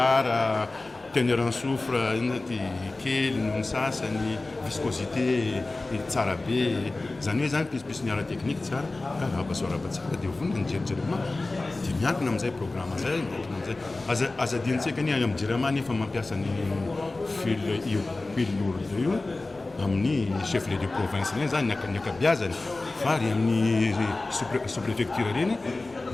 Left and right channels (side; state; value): right; quieter; 3.2 dB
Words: teneur en soufre ty kely noho ny sasany, viscosité tsara be, zany hoe zany pispisy ny ara teknika tsara ka arahabasoaraba tsara dia vonona ny Jirama dia miankina amin'izay programme zay, miankina amin'izay. Azadintsika ny any amin'ny Jirama nefa mampiasa ny fil lourde io amin'ny chef de province reny zany ny akabeazany fa ary amin'ny sous-préfecture reny